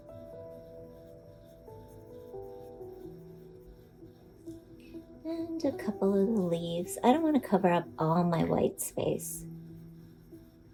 And a couple of the leaves. I don't want to cover up all my white space.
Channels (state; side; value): identical; both; correlation 1.00